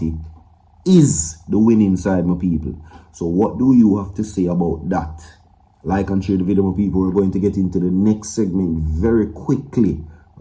is the winning side, my people. So what do you have to say about that? Like and share the video, my people. We're going to get into the next segment very quickly.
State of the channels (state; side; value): identical; both; correlation 1.00